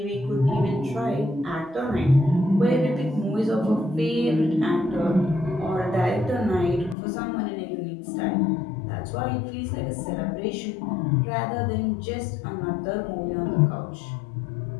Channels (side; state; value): right; drops out; at 7.0 s